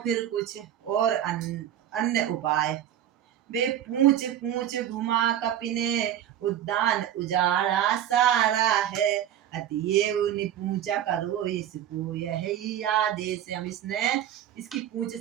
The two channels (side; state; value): left; quieter; 10.9 dB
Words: फिर कुछ और अन्य उपाय। वे पूछ पूछ घुमा कपिने उद्यान उजाड़ा सारा है, अतएव पूछा करो इसको यही आदेश। हम इसने इसकी पूछ